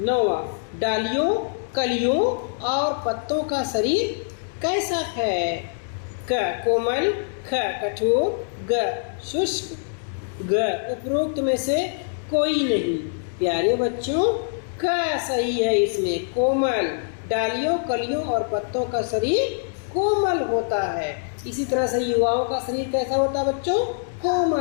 नौवां, डालियों, कलियों और पत्तों का शरीर कैसा है? क कोमल, ख कठोर, ग शुष्क, ग उपरोक्त में से कोई नहीं। प्यारे बच्चों क सही है इसमें, कोमल। डालियों, कलियों और पत्तों का शरीर कोमल होता है। इसी तरह से युवाओं का शरीर कैसा होता है बच्चों?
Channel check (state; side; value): silent; right; digital silence